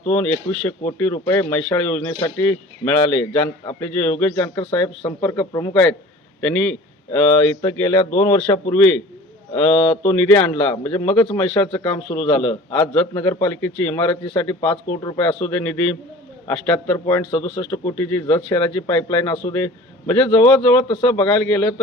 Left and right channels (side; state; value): both; normal; correlation 0.43